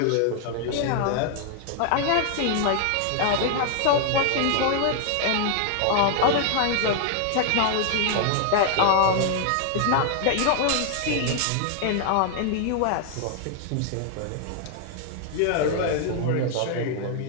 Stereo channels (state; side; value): different; both; correlation 0.00